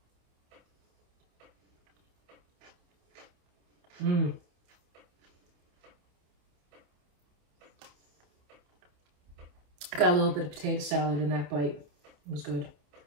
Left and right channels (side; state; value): left; late; 27 ms